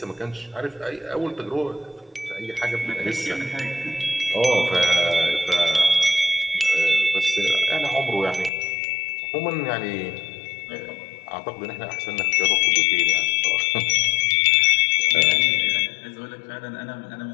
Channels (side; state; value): right; drops out; at 8.5 s